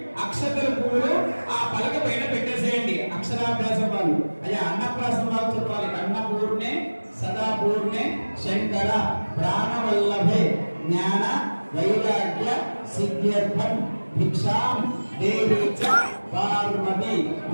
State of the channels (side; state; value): both; inverted; correlation -1.00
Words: అక్షతల పువ్వులు ఆ పలక పైన పెట్టేసేయండి. అక్షరాభ్యాసం వాళ్ళు అయ్యా అన్నప్రాసం వాళ్ళు చెప్పాలి. అన్నపూర్ణే సదాపూర్ణే శంకర ప్రాణవల్లభే జ్ఞాన వైరాగ్య సిద్ధ్యర్థం భిక్షాం దేవీచ పార్వతి.